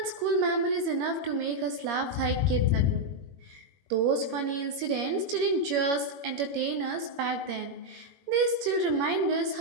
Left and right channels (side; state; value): left; late; 21 ms